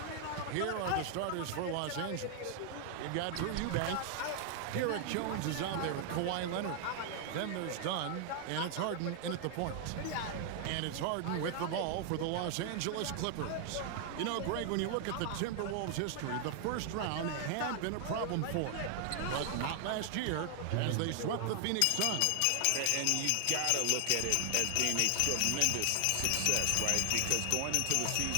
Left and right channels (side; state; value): both; different; correlation 0.00